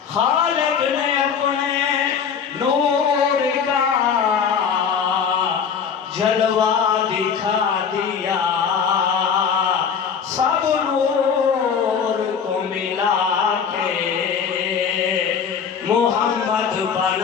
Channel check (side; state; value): right; quieter; 6.8 dB